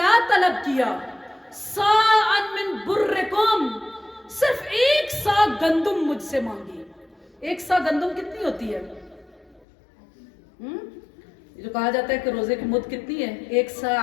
तलब किया, साअन मिन बुर्रिकुम, सिर्फ 1 सा गंदुम मुझसे मांगी। 1 सा गंदुम कितनी होती है? जो कहा जाता है कि रोजे की मुद्द कितनी है, 1 सा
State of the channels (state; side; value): drops out; right; at 9.7 s